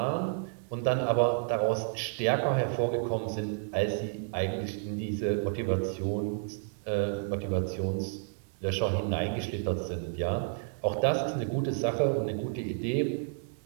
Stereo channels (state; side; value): silent; left; 57 dB below the other